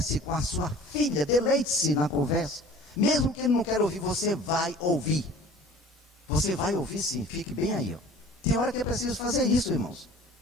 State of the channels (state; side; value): normal; both; correlation 0.46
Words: com a sua filha. Deleite-se na conversa. Mesmo que ele não queira ouvir, você vai ouvir. Você vai ouvir sim. Fique bem aí. Ó. Tem hora que é preciso fazer isso, irmãos.